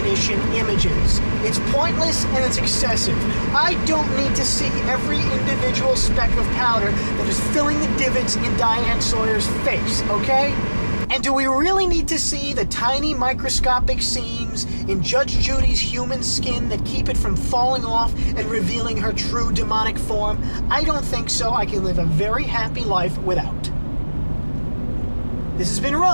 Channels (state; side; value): inverted; both; correlation -1.00